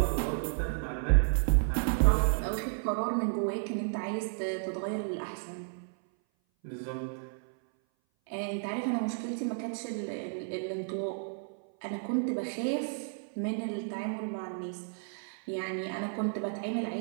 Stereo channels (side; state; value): left; silent; 56 dB below the other